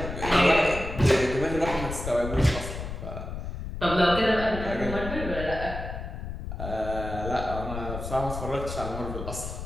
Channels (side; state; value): left; noise; rumble, 7 dB below the sound